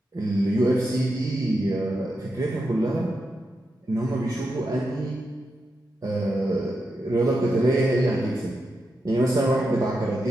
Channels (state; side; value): normal; both; correlation 0.87